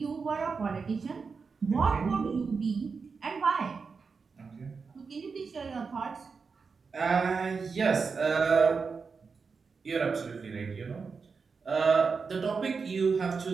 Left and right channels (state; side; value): quieter; left; 5.1 dB